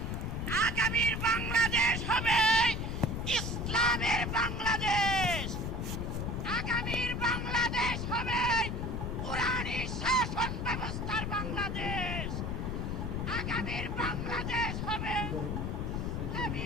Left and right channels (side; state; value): left; noise; rumble, 2 dB below the sound